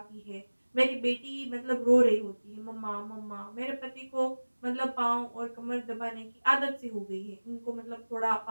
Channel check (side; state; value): both; inverted; correlation -1.00